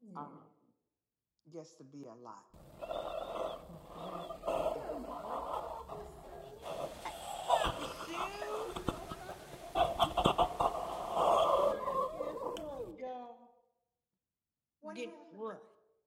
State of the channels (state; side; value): identical; both; correlation 1.00